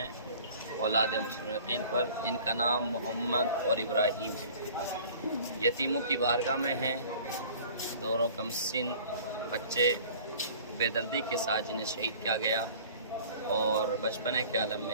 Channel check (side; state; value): both; inverted; correlation -0.48